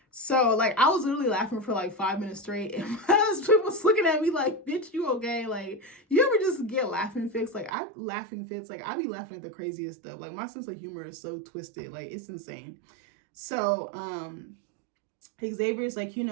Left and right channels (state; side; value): drops out; left; at 7.8 s